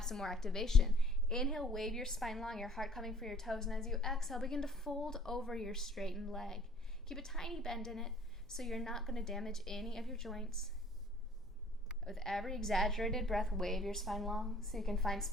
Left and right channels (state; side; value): normal; both; correlation 0.54